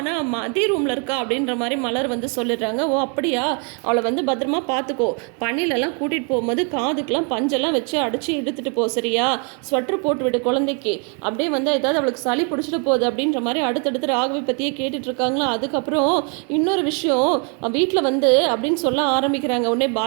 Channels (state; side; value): quieter; left; 37.9 dB